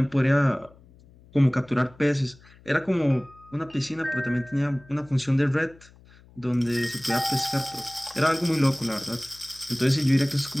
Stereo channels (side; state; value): left; noise; hum, 25 dB below the sound